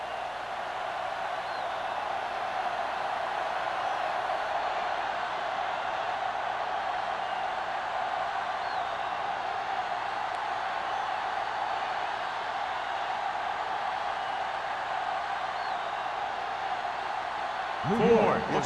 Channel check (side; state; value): both; identical; correlation 1.00